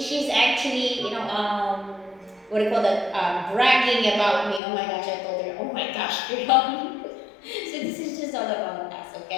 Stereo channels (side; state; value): right; drops out; at 4.6 s